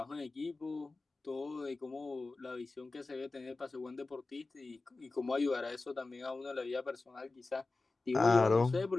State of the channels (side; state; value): right; quieter; 3.5 dB